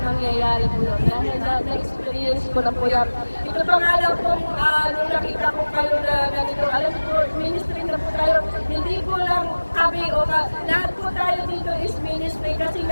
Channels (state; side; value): inverted; both; correlation -1.00